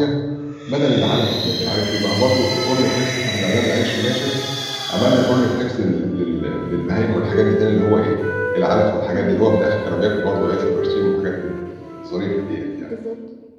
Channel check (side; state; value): both; identical; correlation 1.00